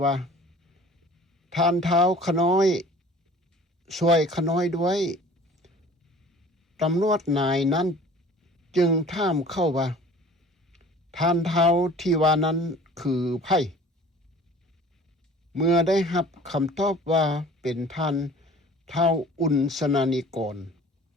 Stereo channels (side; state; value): both; normal; correlation 0.47